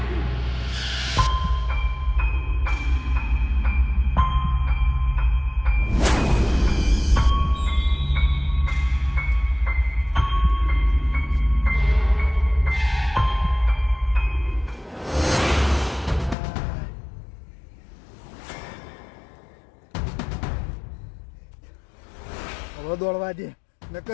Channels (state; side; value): drops out; right; at 16.4 s